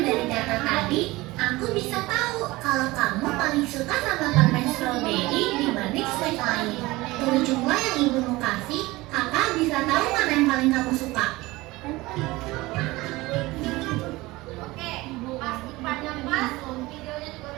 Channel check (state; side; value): quieter; left; 20.3 dB